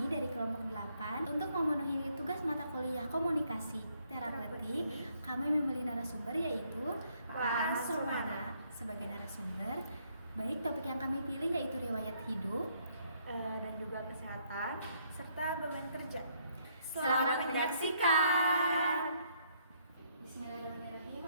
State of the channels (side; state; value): both; inverted; correlation -0.69